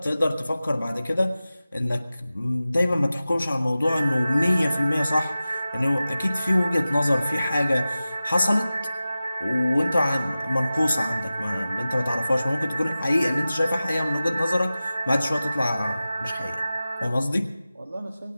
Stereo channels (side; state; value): both; inverted; correlation -0.95